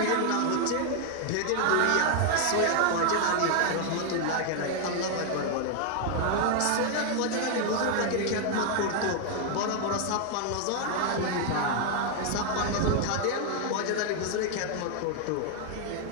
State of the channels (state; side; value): different; both; correlation 0.00